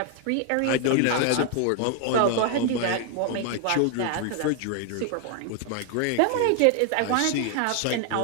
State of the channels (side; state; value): both; different; correlation 0.00